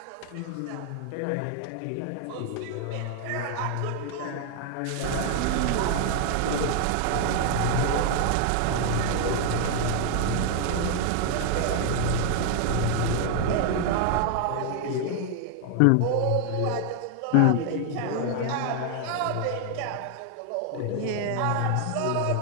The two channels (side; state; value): both; different; correlation 0.00